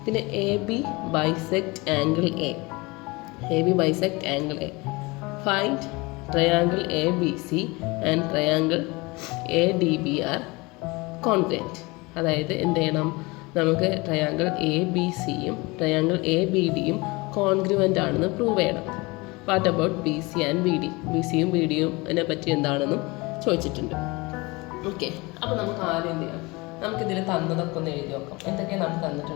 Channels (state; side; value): quieter; right; 24.5 dB